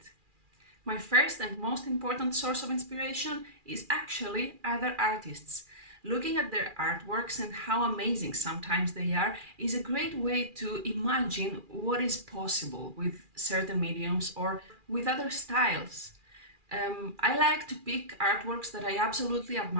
My first and most important source of inspiration is actually other artists. Looking at their artworks and how amazing sometimes they are is a great way to imagine what is possible with certain mediums or with other styles. I like to pick artworks that I absolutely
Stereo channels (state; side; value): late; left; 2.4 ms